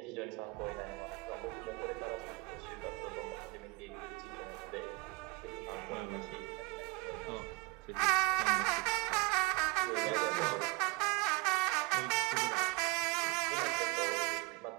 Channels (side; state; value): left; quieter; 26.4 dB